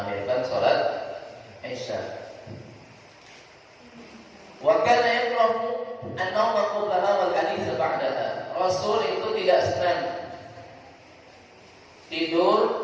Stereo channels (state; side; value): identical; both; correlation 1.00